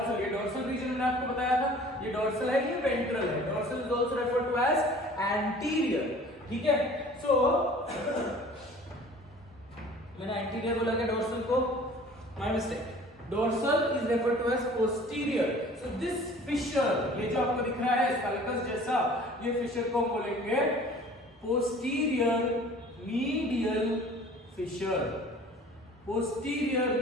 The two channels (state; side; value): normal; both; correlation 0.48